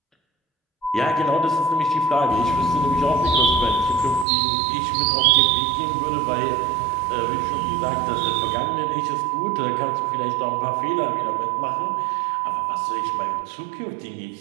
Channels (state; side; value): drops out; left; at 4.2 s